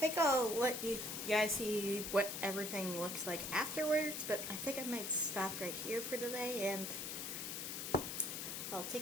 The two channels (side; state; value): left; noise; hiss, 5 dB below the sound